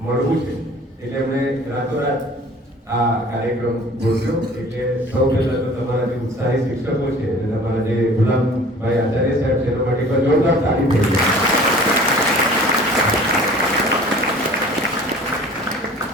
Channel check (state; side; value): normal; both; correlation 0.47